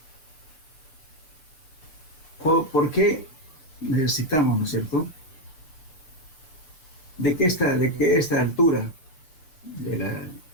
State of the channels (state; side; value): late; right; 6.6 ms